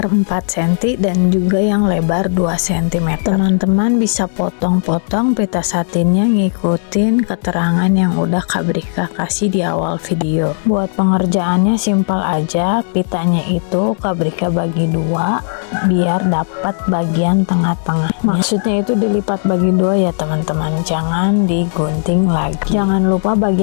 4 cm dan juga yang lebar 2 cm. Teman-teman bisa potong-potong pita satinnya ngikutin keterangan yang udah Kak Brika kasih di awal video. Buat pengerjaannya simpel aja, pitanya itu Kak Brika bagi dua biar dapat bagian tengah-tengah. Maksudnya itu dilipat bagi dua ya teman-teman, jangan digunting lagi. Jangan lupa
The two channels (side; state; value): right; silent; digital silence